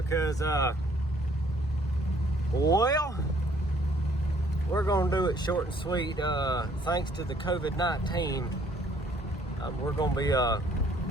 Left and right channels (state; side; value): normal; both; correlation 0.62